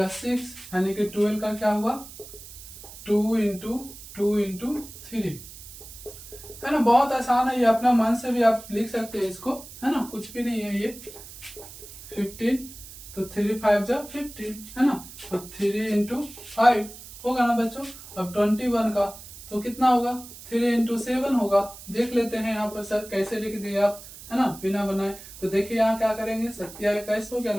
6, यानी कि 12 का क्या हुआ 2 इंटू 3, है ना, बहुत आसान है ये, अपना मन से भी आप लिख सकते हैं इसको, है ना, कुछ भी नहीं है ये। 15 तो 3 5 जा 15, है ना, तो 3 इंटू 5 होगा ना बच्चों। अब 21 का तो कितना होगा 3 इंटू 7 होगा। देख लेते हैं यहाँ पर सर कैसे लिख दिए आप, है ना, बिना बनाए। तो देखिए यहाँ क्या करेंगे, 27 हो गया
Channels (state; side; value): noise; right; hiss, 16 dB below the sound